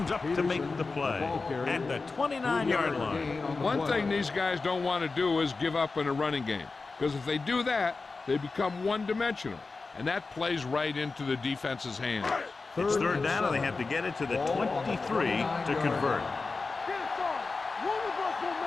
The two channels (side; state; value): right; quieter; 4.0 dB